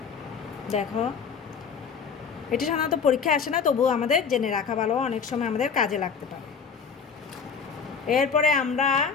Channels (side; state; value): right; quieter; 6.1 dB